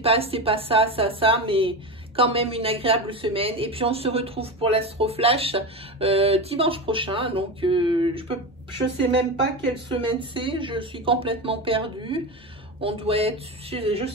ça, mais quand même une agréable semaine. Et puis, on se retrouve pour l'Astroflash dimanche prochain. Donc, je sais même pas quelle semaine c'est. Je suis complètement perdue. On doit être, je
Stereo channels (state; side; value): normal; both; correlation 0.21